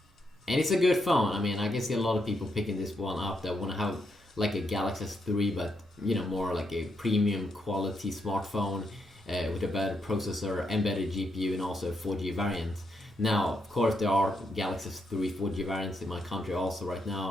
and it's a good phone. I mean, I can see a lot of people picking this one up that want to have like a Galaxy S3, but more like a premium quality smartphone with a better processor and better GPU, and also a 4G variant. Now, of course, there are Galaxy S3 4G variants in my country also right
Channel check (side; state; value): both; normal; correlation 0.80